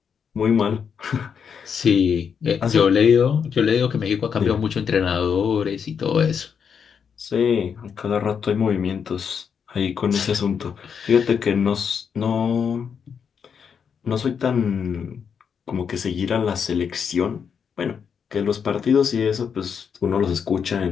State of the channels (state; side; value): quieter; right; 6.9 dB